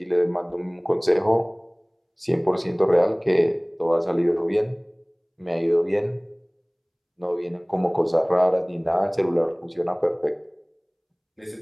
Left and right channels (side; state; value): both; identical; correlation 1.00